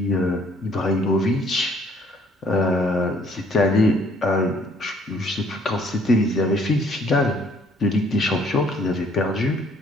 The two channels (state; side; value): normal; both; correlation 0.62